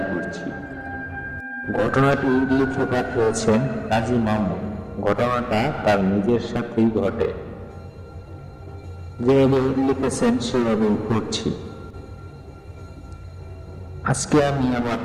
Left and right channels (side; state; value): both; identical; correlation 1.00